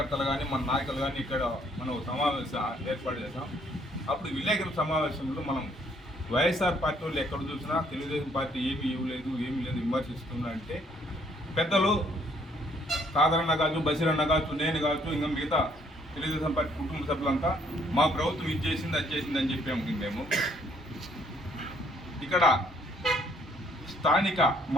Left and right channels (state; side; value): normal; both; correlation 0.65